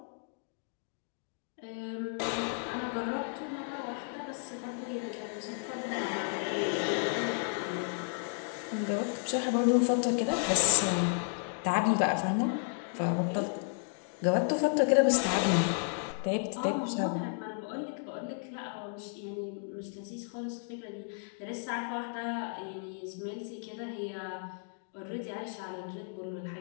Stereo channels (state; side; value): silent; right; 56 dB below the other